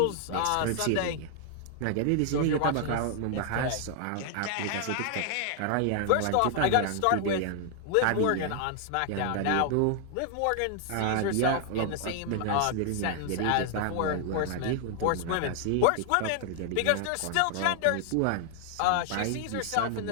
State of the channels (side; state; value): both; different; correlation 0.00